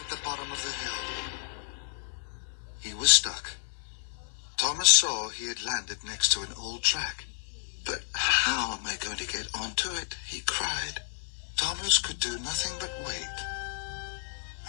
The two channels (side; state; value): right; silent; 57 dB below the other